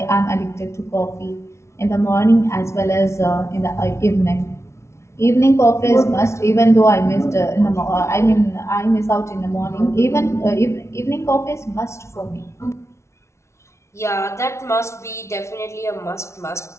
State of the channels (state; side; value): late; right; 0.13 ms